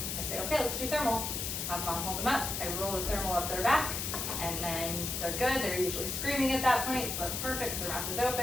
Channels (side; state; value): left; noise; hiss, 3 dB below the sound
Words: I say, okay, let's do thermal. Have mom hold them up. I roll the thermal up their back, and then they're good. They're usually screaming at that point, so that's perfect because their mouth is